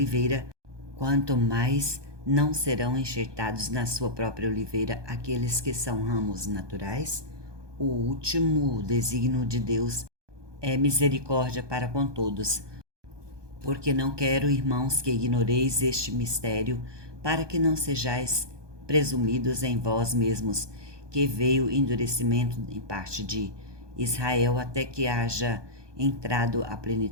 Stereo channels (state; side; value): late; left; 1.2 ms